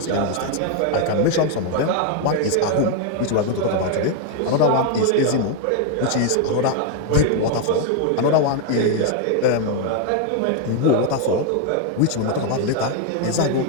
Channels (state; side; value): different; both; correlation 0.01